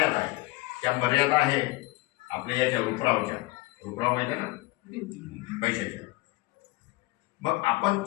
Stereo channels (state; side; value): quieter; right; 21.4 dB